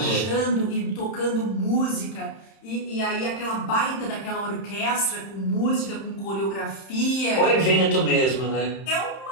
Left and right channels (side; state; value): right; late; 31 ms